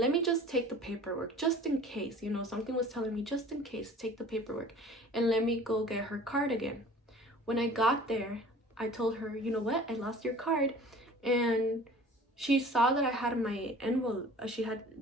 me just take the paperwork just in case, something was telling me just in case, take the paperwork and let me go get her card again. When I got there, I told her, you know what, I lost your card. And she saw that I had my envelope,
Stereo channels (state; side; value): normal; both; correlation 0.45